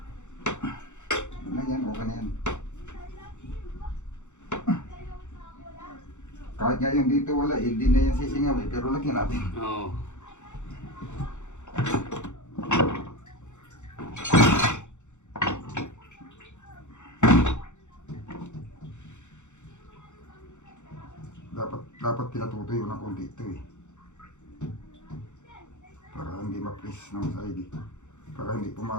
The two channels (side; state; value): right; late; 0.84 ms